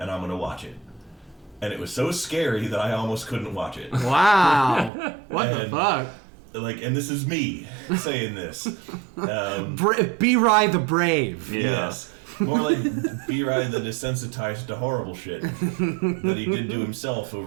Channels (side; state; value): left; drops out; at 4.9 s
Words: I'm gonna watch it. And it was so scary that I almost couldn't watch it. Wow. What the fuck? Like, and this is me saying this. B-Rye the Brave. Yeah. Yes. More like B-Rye the desensitized to horrible shit that he did to himself